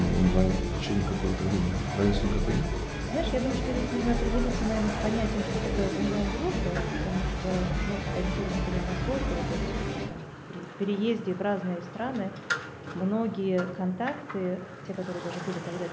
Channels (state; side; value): identical; both; correlation 1.00